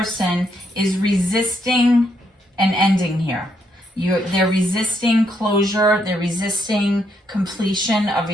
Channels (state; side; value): normal; both; correlation 0.75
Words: is resisting an ending here. They're resisting closure. They're resisting completion of